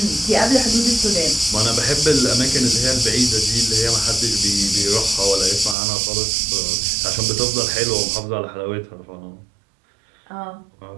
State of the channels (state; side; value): drops out; left; at 5.8 s